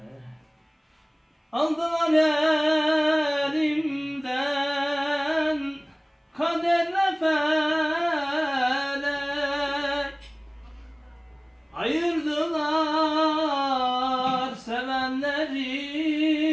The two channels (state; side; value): identical; both; correlation 1.00